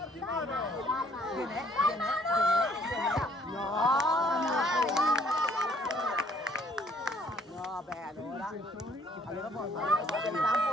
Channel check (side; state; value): both; normal; correlation 0.61